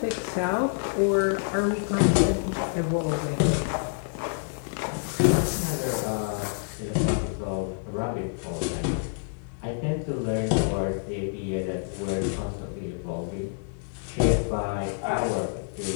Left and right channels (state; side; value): silent; right; digital silence